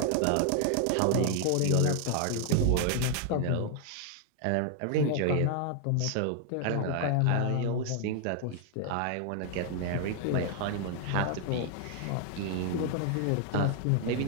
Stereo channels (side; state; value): both; different; correlation 0.00